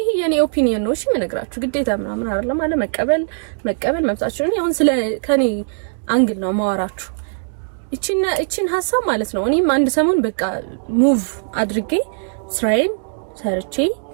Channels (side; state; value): left; silent; digital silence